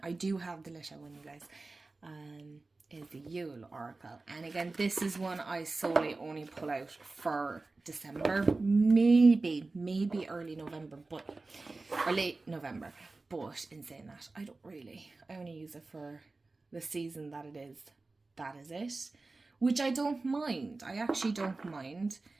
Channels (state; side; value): quieter; left; 3.5 dB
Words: I do have the lit out one, you guys. Is the Yule Oracle. And again, this is one I solely only pull out for December, maybe early November, or late November. But in saying that, I only use it for the season that it is. That is it. Which I don't mind. I actually don't mind